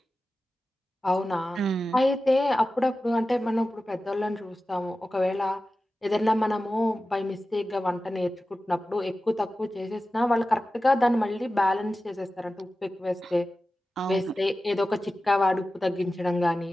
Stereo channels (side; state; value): both; normal; correlation 0.94